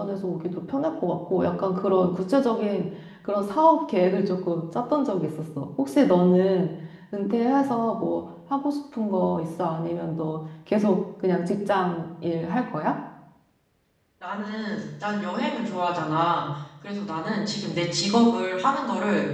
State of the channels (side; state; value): both; identical; correlation 1.00